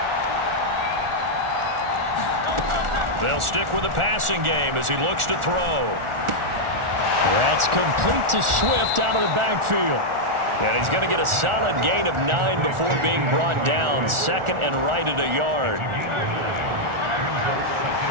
They'll stick with the passing game as he looks to throw. That's complete to Swift out of the backfield. And he's going to get a solid gain of 9 before being brought down. 2nd and right at a yard.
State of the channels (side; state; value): left; late; 1.4 ms